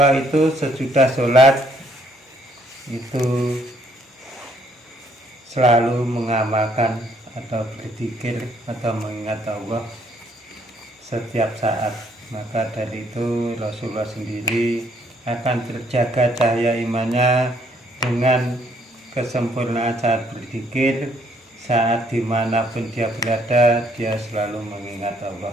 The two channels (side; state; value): both; normal; correlation 0.67